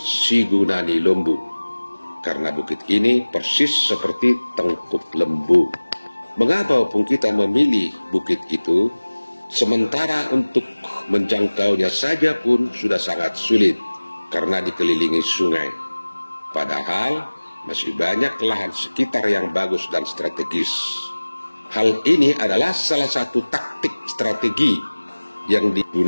Lembu, karena bukit ini persis seperti tengkuk lembu. Mengapa Opung kita memilih bukit itu, sementara untuk menjangkaunya saja pun sudah sangat sulit karena dikelilingi sungai? Padahal masih banyak lahan sekitar yang bagus dan strategis. Hal ini adalah salah satu taktik strategi yang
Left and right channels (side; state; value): both; inverted; correlation -1.00